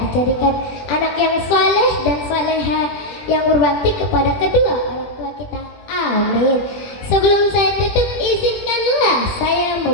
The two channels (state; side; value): late; right; 20 ms